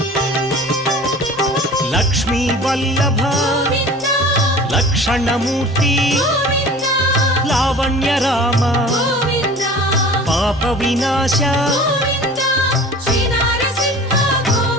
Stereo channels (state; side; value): normal; both; correlation 0.41